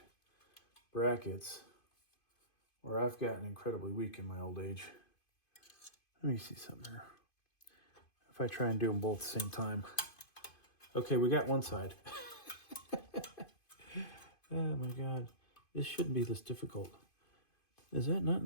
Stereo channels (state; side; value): late; right; 2.5 ms